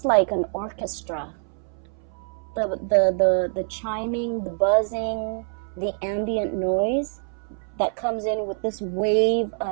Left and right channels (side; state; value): left; silent; 60 dB below the other